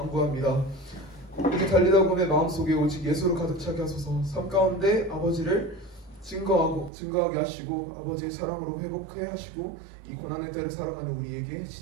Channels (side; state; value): left; drops out; at 6.9 s